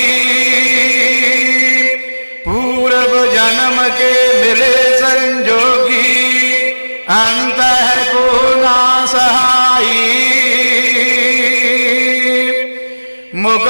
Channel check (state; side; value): inverted; both; correlation -1.00